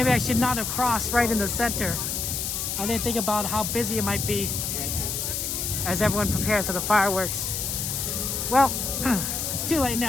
I should not have crossed right in the center. I didn't think about how busy it might be as everyone prepares for the fireworks. Well, it's too late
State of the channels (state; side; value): noise; left; hiss, 2 dB below the sound